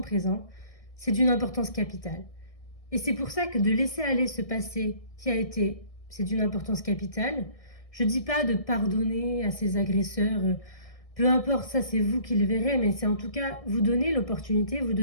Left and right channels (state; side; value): late; right; 1.6 ms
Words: présent, c'est d'une importance capitale. Et c'est pour ça que de laisser aller ce passé qui a été, c'est d'une importance capitale. Je dis pas de pardonner à ses agresseurs, peu importe, ça c'est vous qui le verrez, mais c'est en tout cas vous donner l'opportunité, vous